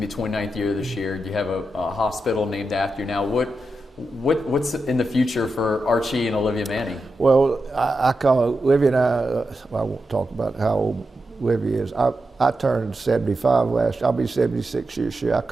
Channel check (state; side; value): normal; both; correlation 0.89